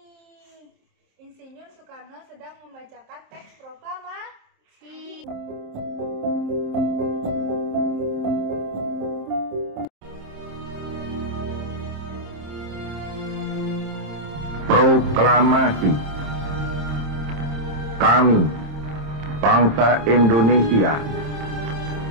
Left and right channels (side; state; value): left; late; 26 ms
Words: Insinyur Soekarno sedang membacakan teks proklamasi. Proklamasi. Kami, bangsa Indonesia,